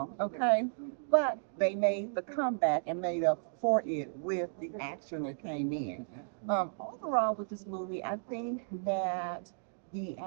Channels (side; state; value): left; silent; digital silence